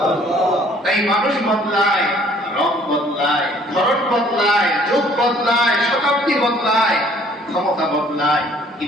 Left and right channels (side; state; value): both; normal; correlation 0.58